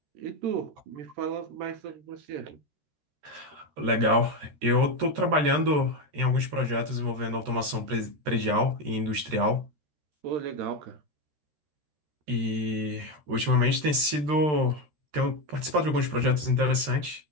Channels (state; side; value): late; left; 13 ms